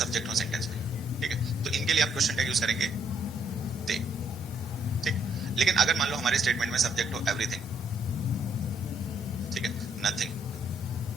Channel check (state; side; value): normal; both; correlation 0.71